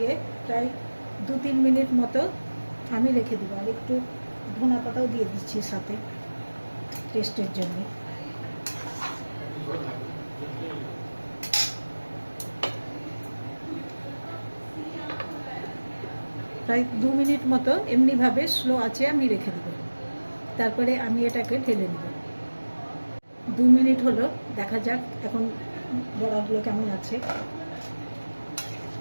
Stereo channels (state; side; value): inverted; both; correlation -1.00